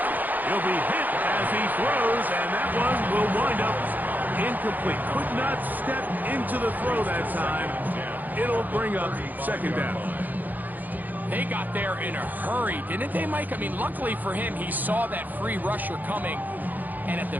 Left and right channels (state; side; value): late; left; 0.084 ms